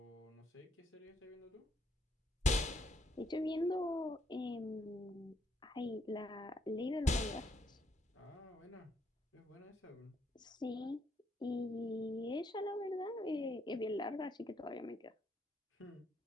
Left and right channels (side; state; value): both; normal; correlation 0.73